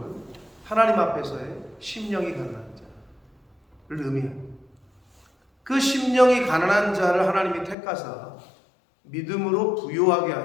하나님 앞에서의 심령이 가난한 자를 의미합니다. 그 심령이 가난한 자를 하나님이 택하사 믿음으로 부요하게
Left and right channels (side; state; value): right; drops out; at 7.8 s